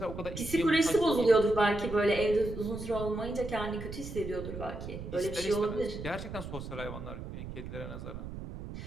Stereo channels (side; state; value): right; noise; rumble, 9 dB below the sound